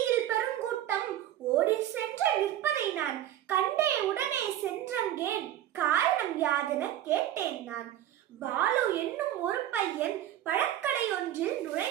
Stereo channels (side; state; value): left; quieter; 12.4 dB